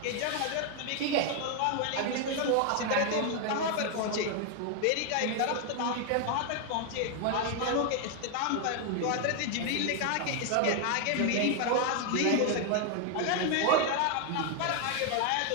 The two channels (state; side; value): different; both; correlation 0.01